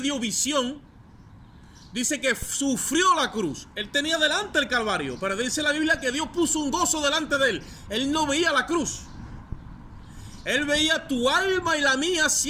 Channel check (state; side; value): identical; both; correlation 1.00